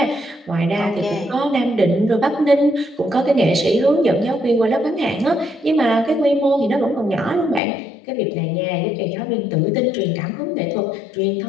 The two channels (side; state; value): right; drops out; at 7.6 s